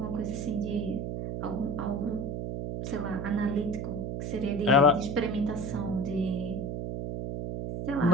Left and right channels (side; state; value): right; noise; hum, 4 dB below the sound